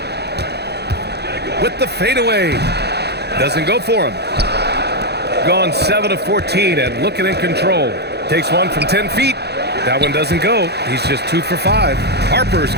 With the fadeaway. Doesn't go for him. Gone 7 of 14 and looking in control. Takes one from 10 feet. That one doesn't go. He's just 2 for 5. Harper's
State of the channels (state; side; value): late; left; 0.48 ms